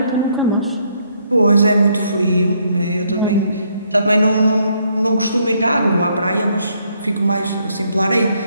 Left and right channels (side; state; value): both; inverted; correlation -0.71